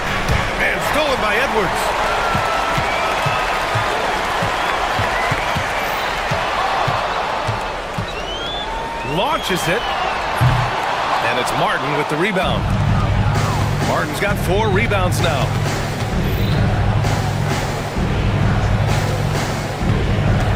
And stolen by Edwards. Launches it. And it's Martin with the rebound. Martin's got 4 rebounds now.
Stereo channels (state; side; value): identical; both; correlation 1.00